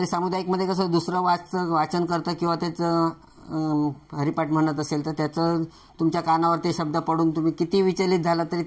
सामुदायिकमध्ये कसं दुसरं वाचन करतं किंवा त्याचं हरिपाठ म्हणत असेल तर त्याचं तुमच्या कानावर ते शब्द पडून तुम्ही किती विचलित झाला तरी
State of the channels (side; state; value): both; identical; correlation 1.00